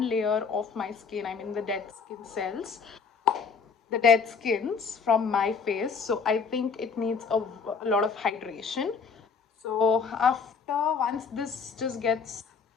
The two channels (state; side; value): quieter; right; 5.5 dB